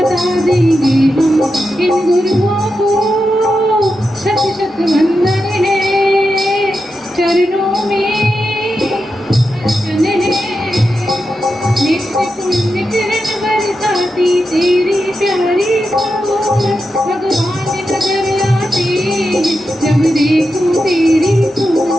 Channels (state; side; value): normal; both; correlation 0.88